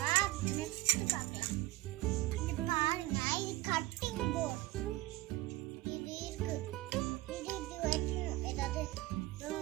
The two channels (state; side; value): quieter; left; 18.6 dB